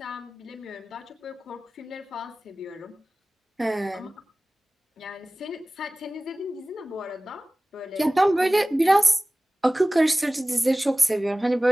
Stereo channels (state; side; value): normal; both; correlation 0.98